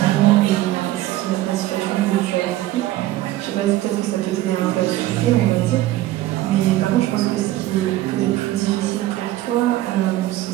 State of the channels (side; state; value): left; quieter; 15.4 dB